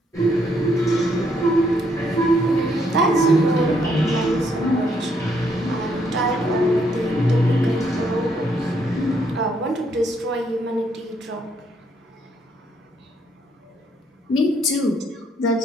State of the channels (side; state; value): both; normal; correlation 0.72